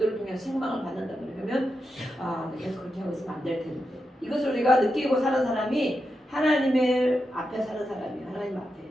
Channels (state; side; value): normal; both; correlation 0.87